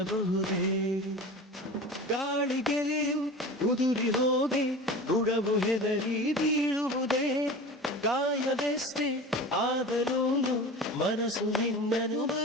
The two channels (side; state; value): both; normal; correlation 0.34